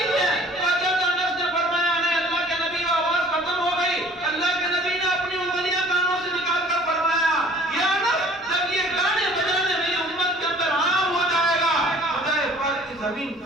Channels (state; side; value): normal; both; correlation 0.51